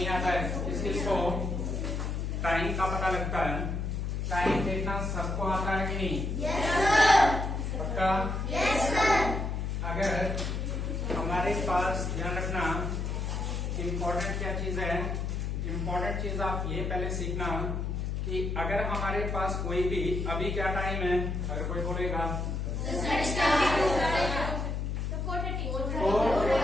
आता है, इसको टाइम का पता लगता है। टाइम देखना सबको आता है कि नहीं? पक्का? अगर हमारे पास, ध्यान रखना, इम्पोर्टेंट क्या चीज है, इम्पोर्टेंट चीज आप ये पहले सीखना कि अगर हमारे पास कोई भी, अभी क्या टाइम है, अगर कोई बोलेगा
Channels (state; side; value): noise; left; hum, 2 dB below the sound